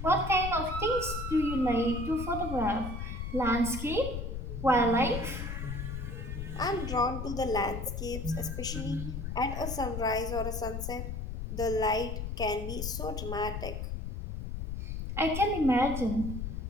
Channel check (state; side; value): noise; left; rumble, 5 dB below the sound